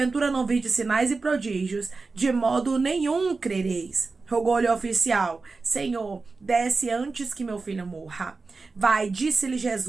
não virdes sinais e prodígios, de modo nenhum crereis. Rogou-lhe o oficial: Senhor, desce antes que meu filho morra. Vai, disse-lhe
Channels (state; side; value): quieter; left; 4.0 dB